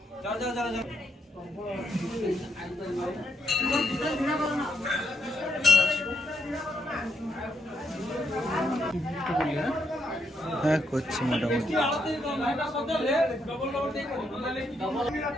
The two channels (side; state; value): both; normal; correlation 0.78